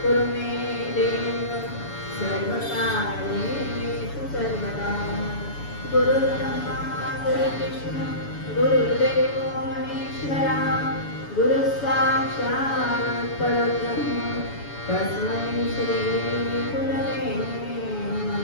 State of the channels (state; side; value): late; right; 7.0 ms